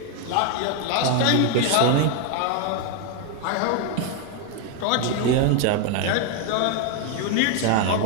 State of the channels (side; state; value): both; different; correlation 0.01